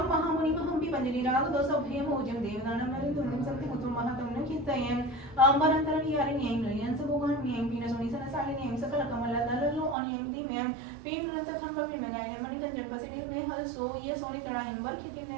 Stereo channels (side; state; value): left; drops out; at 10.0 s